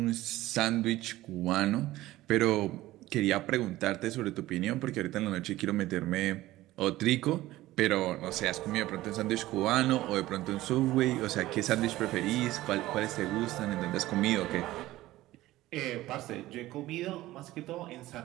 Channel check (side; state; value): left; quieter; 16.5 dB